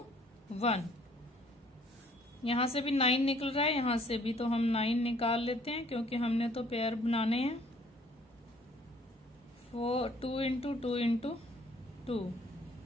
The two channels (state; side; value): normal; both; correlation 0.59